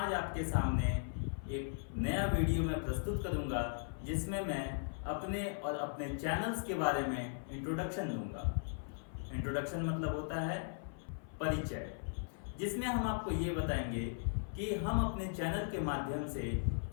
आपके सामने एक नया वीडियो मैं प्रस्तुत करूँगा जिसमें मैं अपने और अपने चैनल्स के बारे में इंट्रोडक्शन दूंगा। इंट्रोडक्शन मतलब होता है परिचय, जिसमें हम आपको ये बताएंगे कि हम अपने चैनल के माध्यम से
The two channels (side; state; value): right; silent; 52 dB below the other